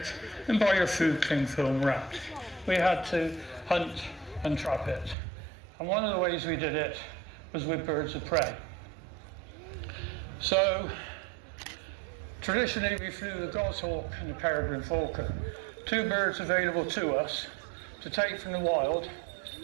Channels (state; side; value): drops out; left; at 5.2 s